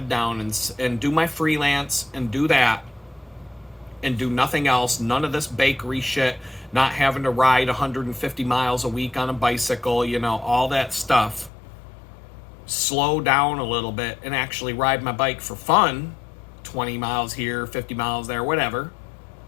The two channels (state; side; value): drops out; right; at 11.5 s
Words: down and do my freelance and do that and do nothing else. None of this bakery shit, not having to ride 150 miles a week on a bicycle, you know, all that stuff. Slow down a little bit and actually ride my bike for fun. 20 miles here, 50 miles there, whatever.